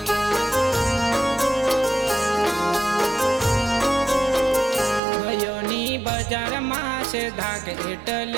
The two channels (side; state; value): left; drops out; at 5.0 s